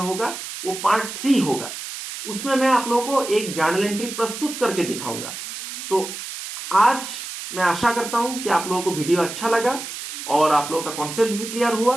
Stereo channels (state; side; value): noise; right; hiss, 9 dB below the sound